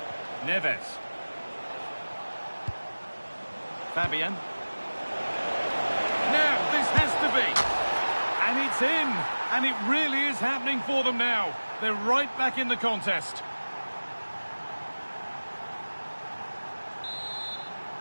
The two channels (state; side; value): inverted; both; correlation -1.00